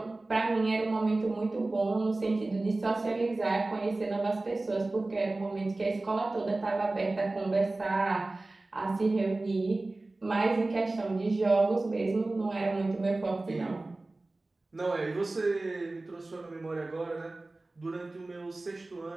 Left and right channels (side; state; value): left; quieter; 3.0 dB